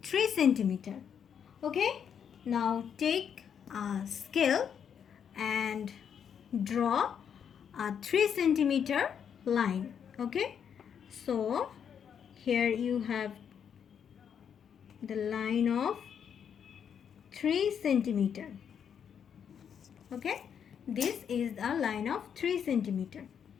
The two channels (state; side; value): quieter; right; 7.9 dB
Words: 3 cm. Okay, now take a scale and draw a 3 cm line. Okay, so here you have the line of 3 cm. Okay, this is a line of 3 cm.